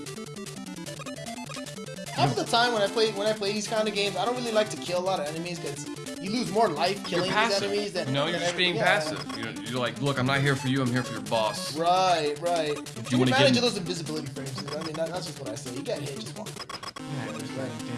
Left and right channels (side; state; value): both; identical; correlation 1.00